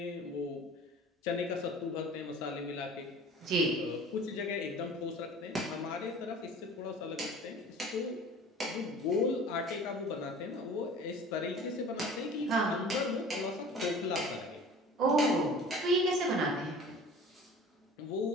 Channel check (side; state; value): both; normal; correlation 0.43